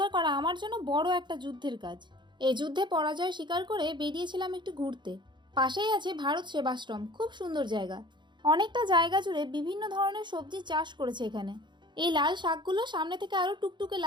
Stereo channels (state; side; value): late; left; 0.22 ms